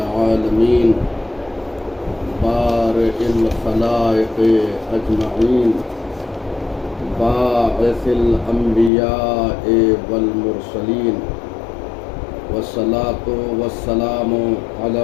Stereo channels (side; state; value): right; drops out; at 8.9 s